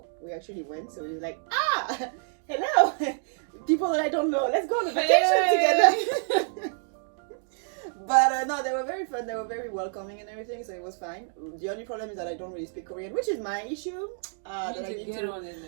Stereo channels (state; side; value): silent; left; 58 dB below the other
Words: we actually went, so it was like, hello, people that I don't know, let's go on a vacation together. But no, they were very fun, they were very welcoming and everything, so it was fine. The only problem is that I don't really speak Korean, which is my issue. You need to get on it,